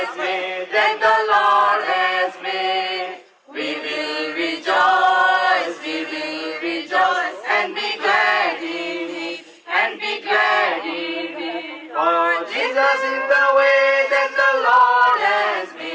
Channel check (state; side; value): identical; both; correlation 1.00